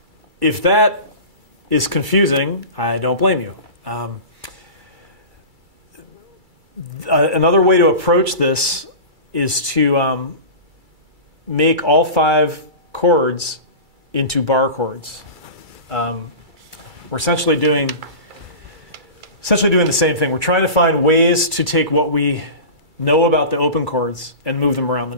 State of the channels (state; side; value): late; left; 2.3 ms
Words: if that is confusing, I don't blame you. Another way to approach this is to make all 5 chords into bar chords. We're essentially doing the same thing. We're trying to find ways to take what we know about the open chords and move them around the